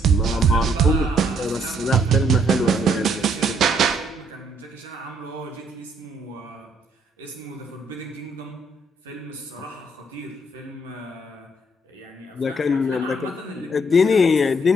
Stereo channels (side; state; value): both; normal; correlation 0.68